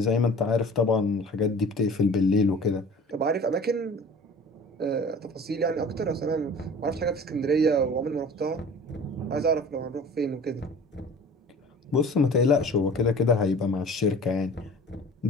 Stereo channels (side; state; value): both; normal; correlation 0.43